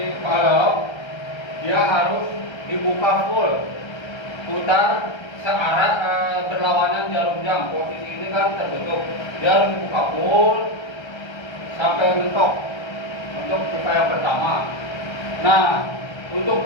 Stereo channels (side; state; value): right; late; 1.3 ms